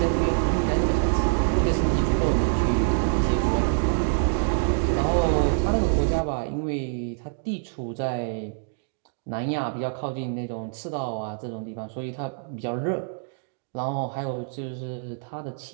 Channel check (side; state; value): left; silent; digital silence